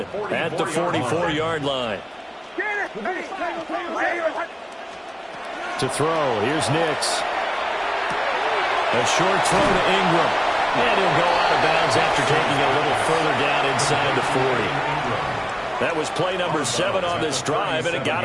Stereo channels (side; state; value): both; identical; correlation 1.00